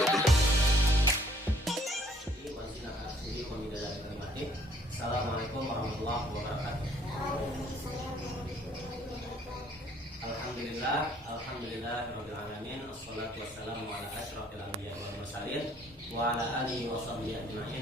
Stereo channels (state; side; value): normal; both; correlation 0.62